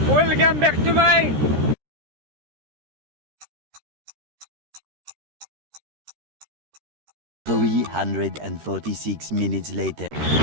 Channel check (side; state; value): left; late; 13 ms